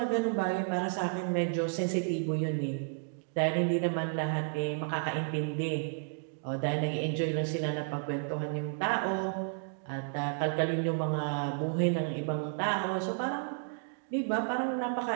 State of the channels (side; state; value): left; silent; digital silence